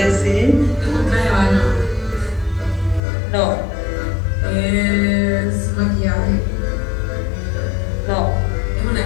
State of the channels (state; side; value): drops out; right; at 3.0 s